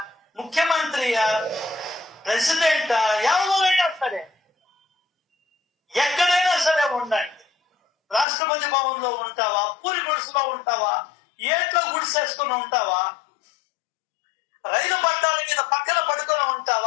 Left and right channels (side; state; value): right; drops out; at 8.2 s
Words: ముఖ్యమంత్రియా, ప్రెసిడెంటా, ఎవరైనా సరే ఎక్కడైనా సరే ఉండండి. రాష్ట్రపతి భవన్ లో ఉంటావా, పూరి గుడిసెలో ఉంటావా, ఏట్లో గుడిసేసుకుని ఉంటావా, రైలు పట్టాల మీద పక్కన పడుకొని